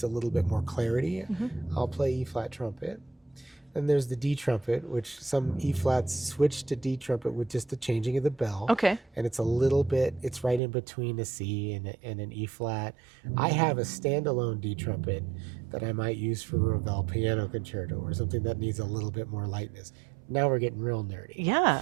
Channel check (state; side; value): drops out; left; at 10.6 s